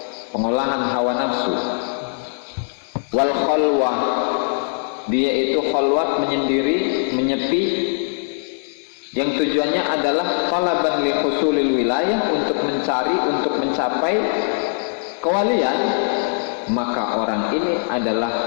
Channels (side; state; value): right; silent; digital silence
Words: pengolahan hawa nafsu, wal khalwah, dia itu khalwat, menyendiri, menyepi, yang tujuannya adalah talaban li husulil wilayah, untuk mencari, untuk mencapai kewalian, maka orang ini adalah